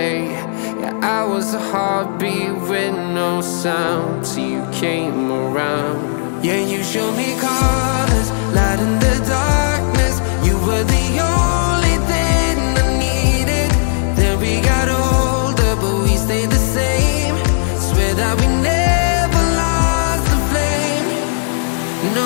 Yeah, I was a heartbeat with no sound till you came around. Yeah, you showed me colors, light in the darkness. You were the only thing I needed. Then we got older, but we stayed the same. Swear that we never lost the flame. No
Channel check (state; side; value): silent; right; digital silence